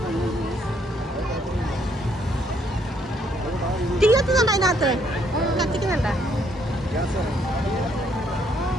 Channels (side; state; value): both; normal; correlation 0.69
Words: തീ കത്തുന്നുണ്ടോ അതിനകത്ത്? കത്തിക്കുന്നുണ്ടോ?